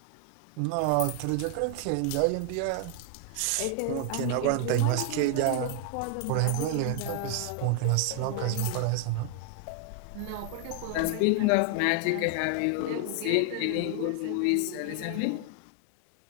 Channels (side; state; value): both; different; correlation 0.00